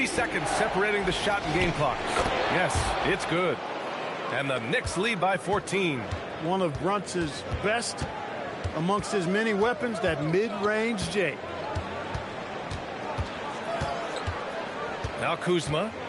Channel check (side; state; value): both; identical; correlation 1.00